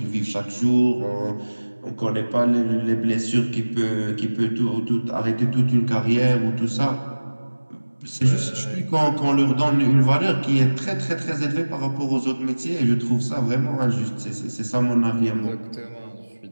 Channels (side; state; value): both; inverted; correlation -1.00